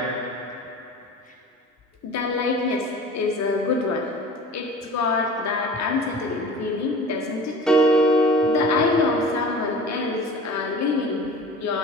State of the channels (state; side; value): normal; both; correlation 0.40